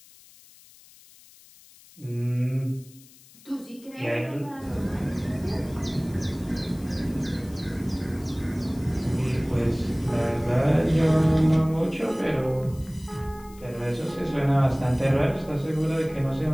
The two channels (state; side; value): noise; left; hiss, 24 dB below the sound